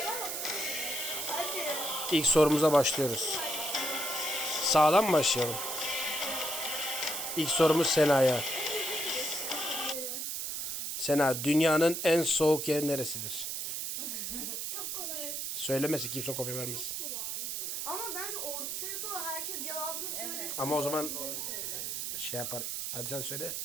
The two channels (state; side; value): noise; right; hiss, 3 dB below the sound